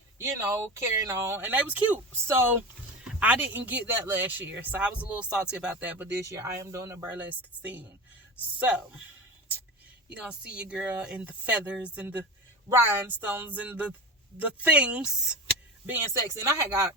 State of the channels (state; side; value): normal; both; correlation 0.27